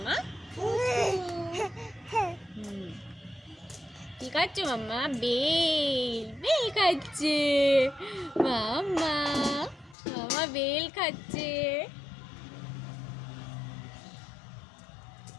কি খাচ্ছ মাম্মা? বেল খাচ্ছে মাম্মা, মাম্মা বেল খাচ্ছে।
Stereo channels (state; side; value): drops out; right; at 10.0 s